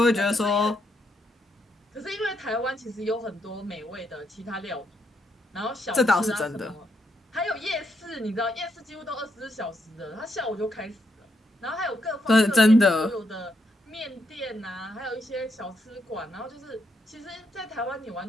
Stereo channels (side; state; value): both; normal; correlation 0.78